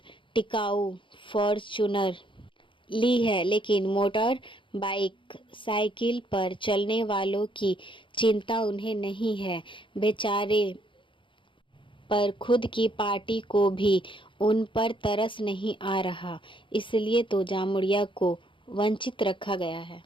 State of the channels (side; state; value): right; late; 0.24 ms